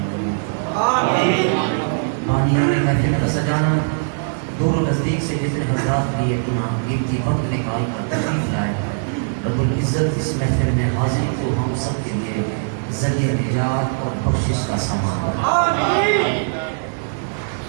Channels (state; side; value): silent; left; digital silence